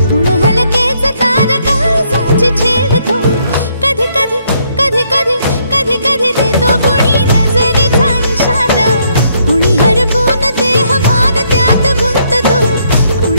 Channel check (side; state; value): both; inverted; correlation -0.71